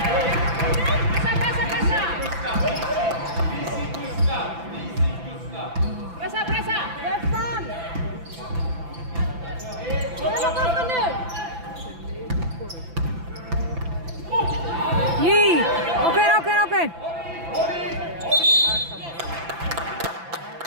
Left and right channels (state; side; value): late; left; 5.9 ms